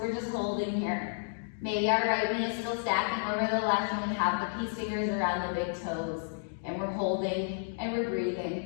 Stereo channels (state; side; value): silent; right; digital silence